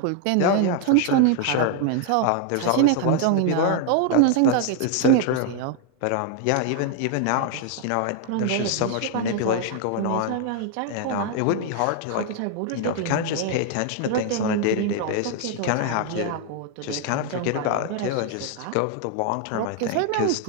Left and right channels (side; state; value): both; different; correlation 0.00